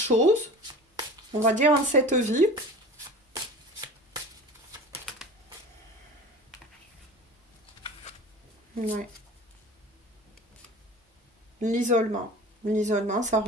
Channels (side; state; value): both; normal; correlation 0.37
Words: on va dire en cette vie. Ouais. L'isolement. L'isolement, ça